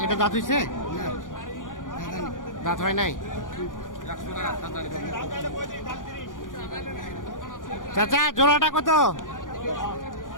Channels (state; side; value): late; right; 0.88 ms